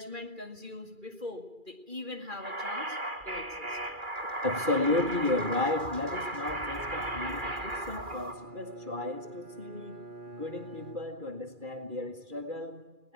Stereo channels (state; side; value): late; left; 2.4 ms